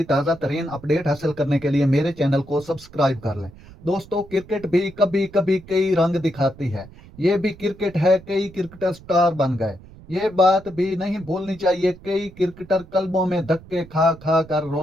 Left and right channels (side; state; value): right; noise; rumble, 20 dB below the sound